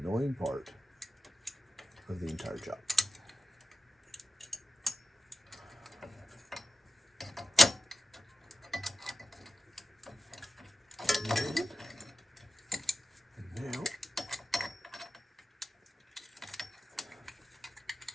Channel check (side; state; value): both; normal; correlation 0.94